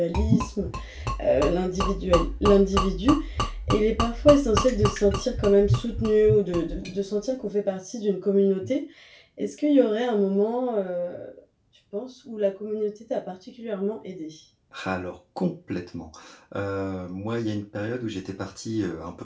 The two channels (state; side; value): identical; both; correlation 1.00